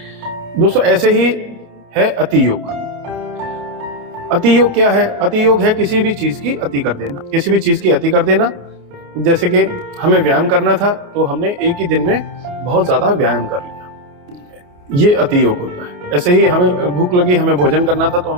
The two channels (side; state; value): left; late; 28 ms